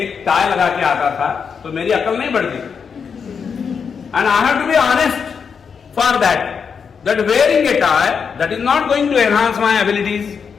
एक टाई लगा के आता था तो मेरी अकल नहीं बढ़ती, and I have to be honest for that wearing a tie that is not going to enhance my abilities.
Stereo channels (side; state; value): right; quieter; 6.3 dB